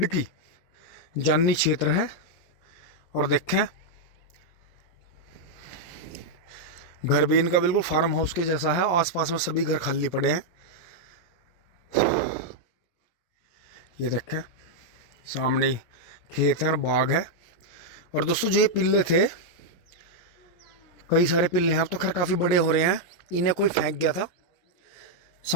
जाननी क्षेत्र है। और देखें घर भी इनका बिल्कुल फार्म हाउस के जैसा है, आसपास में सभी घर खाली पड़े हैं। ये देखें सामने ही खेत है और बाग है। और दोस्तों जो ये पिल्ले थे, कई सारे पिल्ले हैं, अब तो खैर काफ़ी बड़े हो रहे हैं। इन्हें कोई फेंक गया था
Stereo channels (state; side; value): late; right; 17 ms